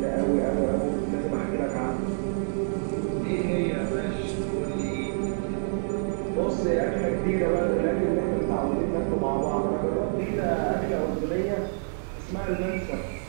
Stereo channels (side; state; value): left; silent; 60 dB below the other